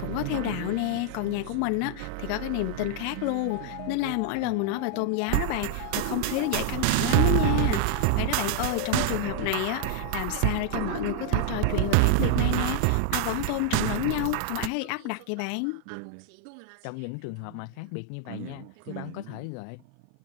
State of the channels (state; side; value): different; both; correlation 0.00